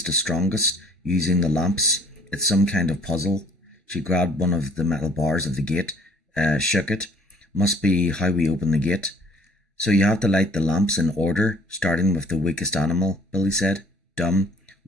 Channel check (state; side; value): normal; both; correlation 0.56